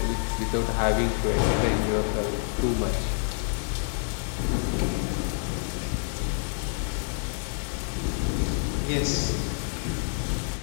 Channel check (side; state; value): right; silent; digital silence